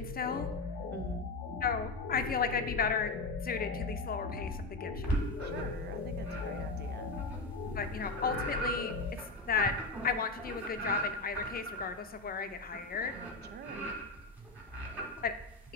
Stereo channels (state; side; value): quieter; right; 3.5 dB